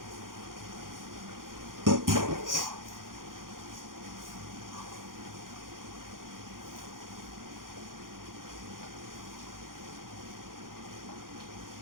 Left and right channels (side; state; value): left; late; 0.90 ms